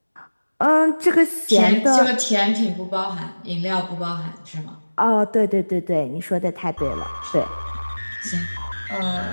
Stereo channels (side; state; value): both; inverted; correlation -1.00